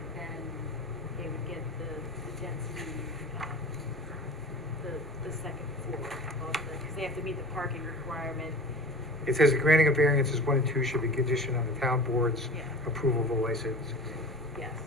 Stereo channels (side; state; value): both; normal; correlation 0.37